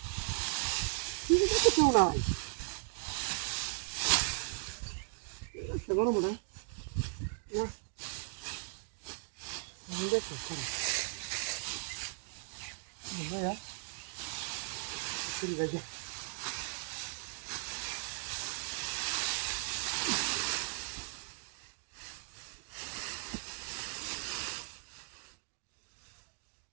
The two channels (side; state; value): left; silent; 53 dB below the other